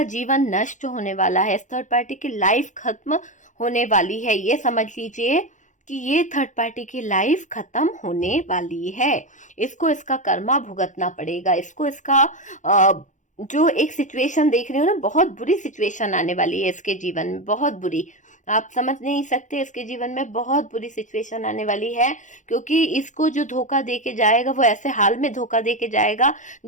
जीवन नष्ट होने वाला है, इस थर्ड पार्टी की लाइफ खत्म होने वाली है। ये समझ लीजिए कि ये थर्ड पार्टी की लाइफ खत्म होने वाली है। इसको इसका कर्मा भुगतना पड़ेगा, इसको इसका जो एक सिचुएशन देख रहे हो ना, बहुत बुरी सिचुएशन आने वाली है इसके जीवन में, बहुत बुरी, आप समझ नहीं सकते। इसके जीवन में बहुत बुरी सिचुएशन आने वाली है क्योंकि इसको जो धोखा दे के जाएगा वो ऐसे हाल में धोखा दे के जाएगा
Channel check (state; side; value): late; right; 0.36 ms